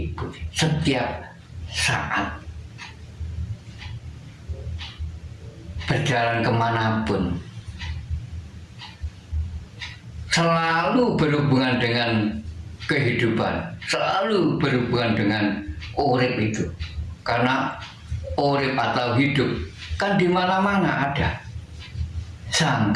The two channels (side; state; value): both; identical; correlation 1.00